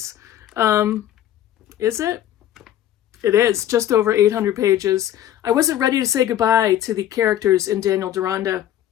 Is it? It is, just over 800 pages. I wasn't ready to say goodbye to the characters in Daniel Deronda.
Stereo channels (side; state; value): right; quieter; 11.8 dB